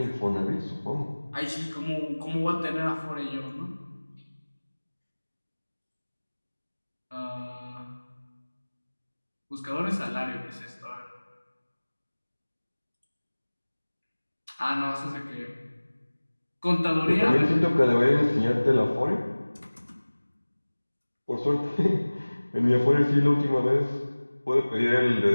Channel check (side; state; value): both; inverted; correlation -1.00